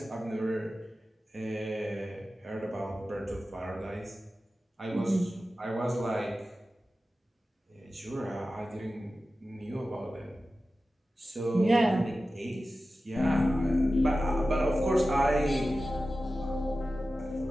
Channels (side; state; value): both; normal; correlation 0.94